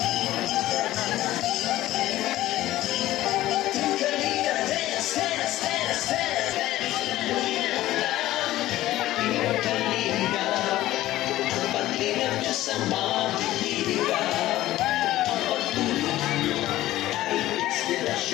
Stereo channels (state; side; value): quieter; right; 15.4 dB